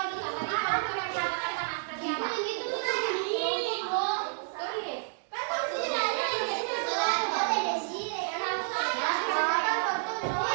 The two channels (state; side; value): silent; left; 58 dB below the other